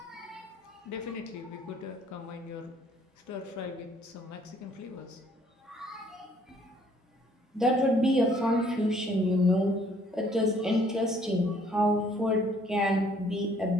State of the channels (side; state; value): both; normal; correlation 0.62